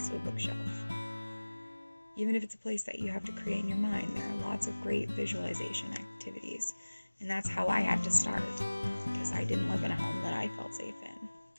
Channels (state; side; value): inverted; both; correlation -1.00